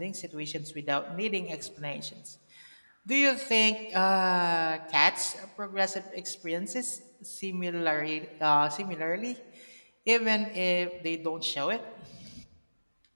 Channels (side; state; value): both; inverted; correlation -1.00